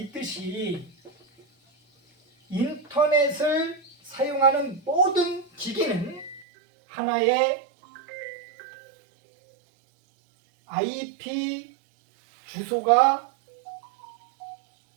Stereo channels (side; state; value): left; drops out; at 6.5 s